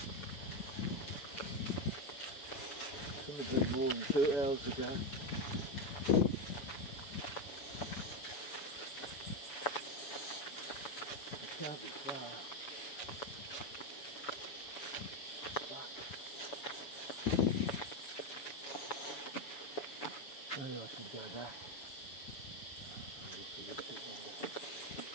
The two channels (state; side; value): late; right; 7.1 ms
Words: Couldn't have been more than 2 hours ago. It can't be far. Fuck. Maybe I should go back. I'll look a little bit longer.